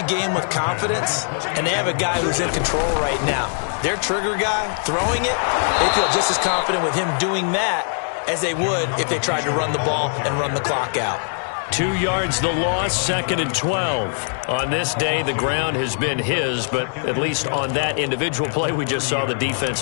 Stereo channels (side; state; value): right; silent; digital silence